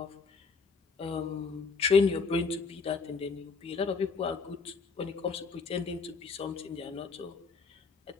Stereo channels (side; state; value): right; quieter; 4.8 dB